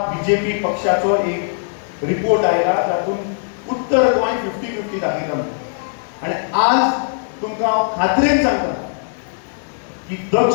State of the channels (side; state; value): right; silent; digital silence